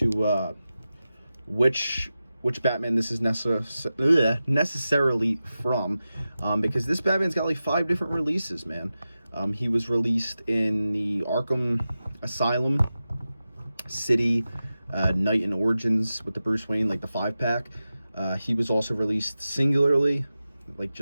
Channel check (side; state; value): both; inverted; correlation -0.93